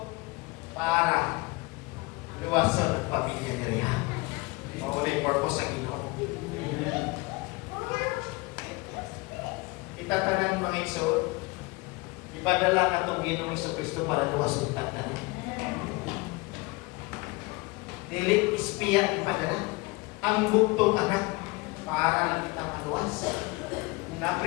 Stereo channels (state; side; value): quieter; right; 24.9 dB